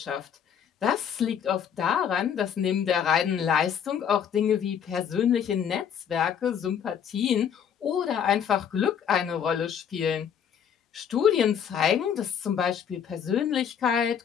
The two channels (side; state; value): right; quieter; 8.2 dB